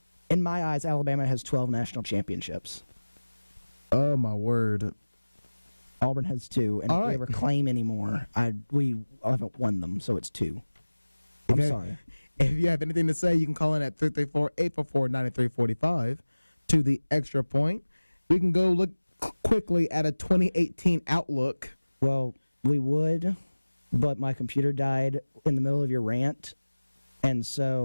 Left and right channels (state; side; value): inverted; both; correlation -1.00